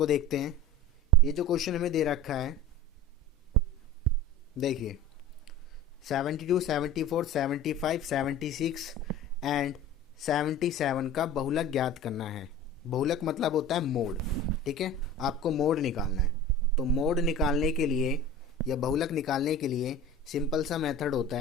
देखते हैं। ये जो क्वेश्चन हमें दे रखा है, देखिए 72, 74, 75, 76 एंड 77 का बहुलक ज्ञात करना है। बहुलक मतलब होता है मोड, ठीक है। आपको मोड निकालना है। तो मोड निकालने के लिए या बहुलक निकालने के लिए सिंपल सा मेथड होता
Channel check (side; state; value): both; normal; correlation 0.36